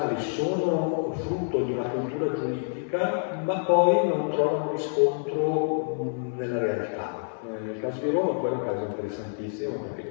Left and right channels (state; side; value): silent; right; 60 dB below the other